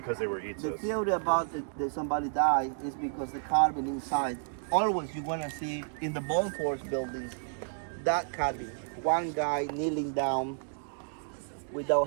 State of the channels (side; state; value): left; silent; digital silence